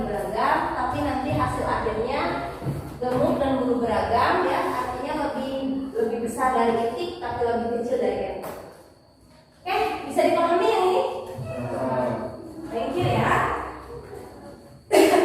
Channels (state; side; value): identical; both; correlation 1.00